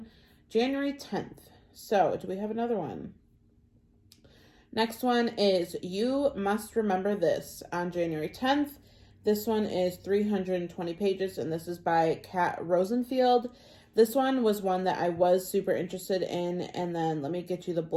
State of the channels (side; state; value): both; identical; correlation 1.00